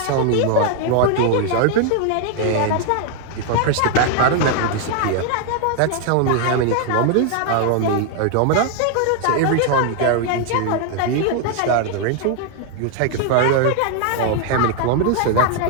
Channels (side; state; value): both; different; correlation 0.00